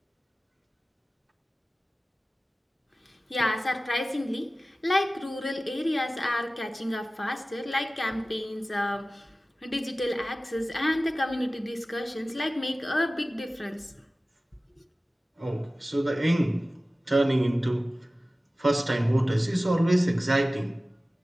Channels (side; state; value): both; normal; correlation 0.96